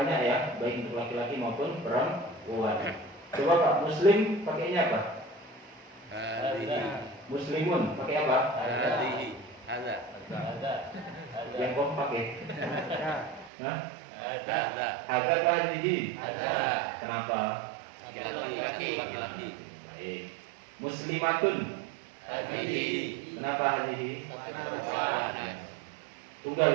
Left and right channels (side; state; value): left; drops out; at 13.5 s